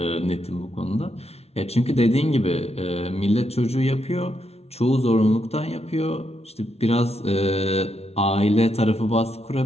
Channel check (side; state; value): right; late; 0.31 ms